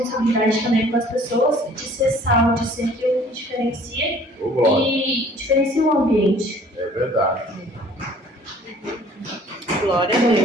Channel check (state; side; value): normal; both; correlation 0.54